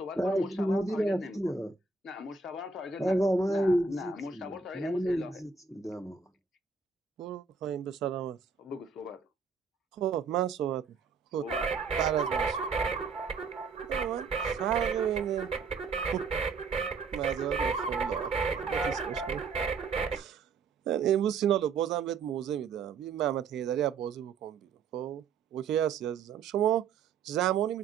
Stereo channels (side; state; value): left; quieter; 4.8 dB